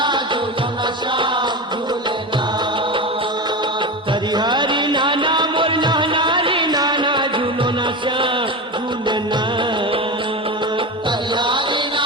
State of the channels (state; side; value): normal; both; correlation 0.22